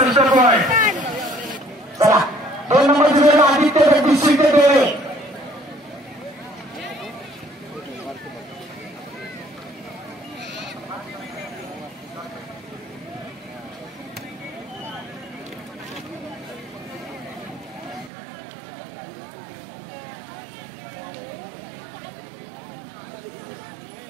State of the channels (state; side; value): drops out; left; at 18.1 s